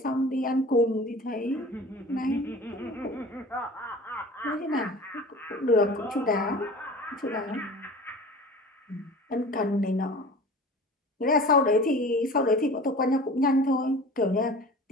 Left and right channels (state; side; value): normal; both; correlation 0.40